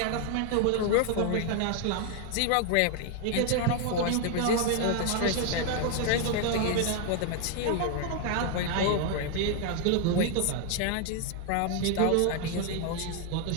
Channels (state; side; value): different; both; correlation 0.00